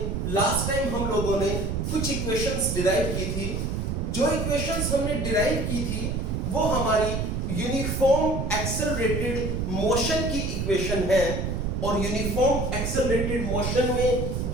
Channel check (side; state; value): right; noise; rumble, 1 dB below the sound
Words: लास्ट टाइम हम लोगों ने कुछ इक्वेशंस डिराइव की थी। जो इक्वेशंस हमने डिराइव की थी वो हमारी यूनिफॉर्म एक्सेलरेटेड मोशन की इक्वेशन है और यूनिफॉर्म एक्सेलरेटेड मोशन में